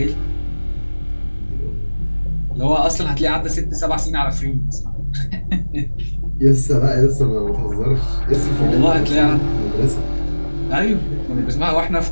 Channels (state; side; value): inverted; both; correlation -1.00